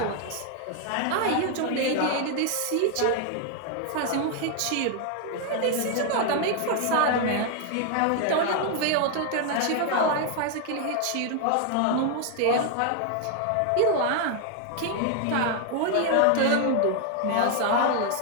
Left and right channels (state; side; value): different; both; correlation 0.00